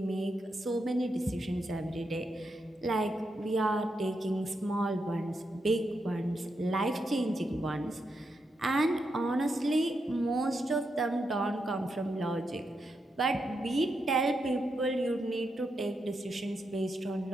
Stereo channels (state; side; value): normal; both; correlation 0.84